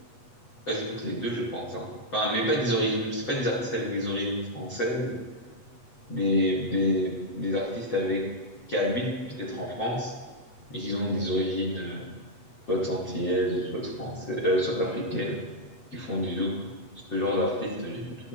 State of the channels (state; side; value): late; right; 8.2 ms